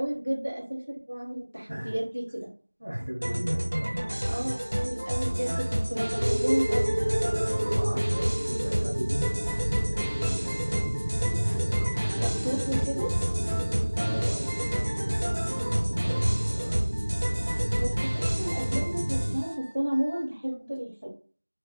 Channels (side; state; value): both; inverted; correlation -1.00